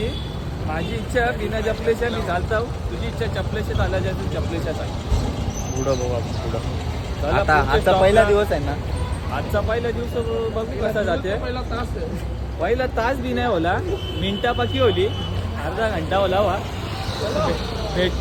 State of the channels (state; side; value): identical; both; correlation 1.00